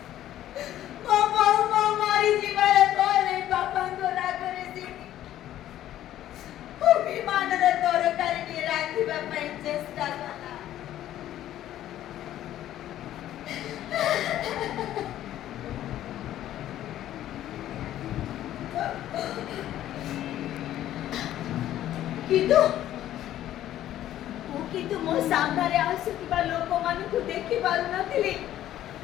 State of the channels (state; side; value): quieter; right; 12.6 dB